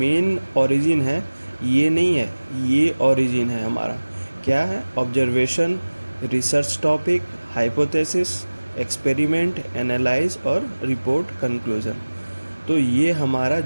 ओरिजिन है ये नहीं है, ये ओरिजिन है हमारा क्या है, observation, research topic, hypothesis, experiment, analyse और रिपोर्ट कंक्लूजन। तो ये हमारा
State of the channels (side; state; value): both; inverted; correlation -1.00